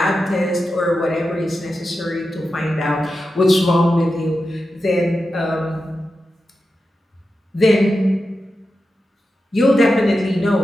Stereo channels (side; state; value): both; normal; correlation 0.90